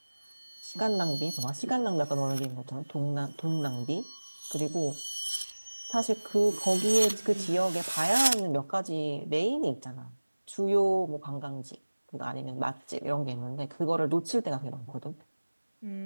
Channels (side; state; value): both; inverted; correlation -1.00